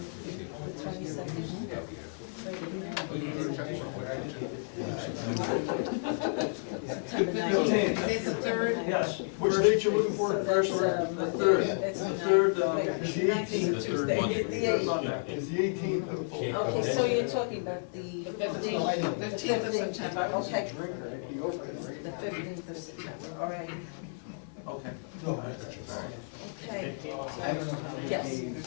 22nd. September 19th. It's the 3rd. Yes. Which date you looking for? First, the third, It's the the third, Is the 18th? third Monday. Is the 18th of Okay, so you're talking about the 15th? 15th of September. Okay. The 15th of September, all right. Okay. Okay. Yes.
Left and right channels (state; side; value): silent; right; digital silence